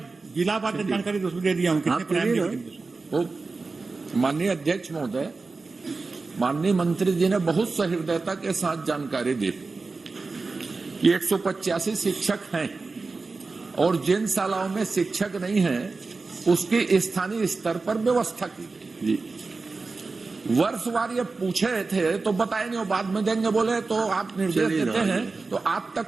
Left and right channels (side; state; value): left; quieter; 4.0 dB